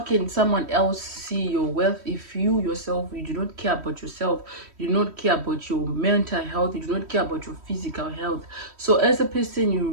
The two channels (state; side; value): late; left; 3.1 ms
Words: someone else see your wealth if you yourself, you do not care about yourself, you do not care about your mental health, you do not care about your physical health? So as a person, you